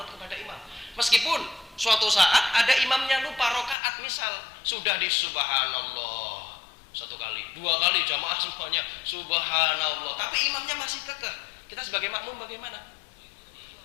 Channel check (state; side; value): drops out; right; at 3.8 s